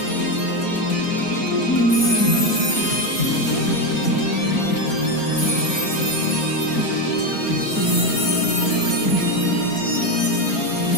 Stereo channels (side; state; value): right; late; 4.4 ms